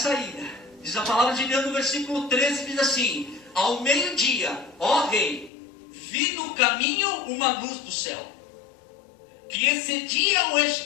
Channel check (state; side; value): drops out; right; at 5.5 s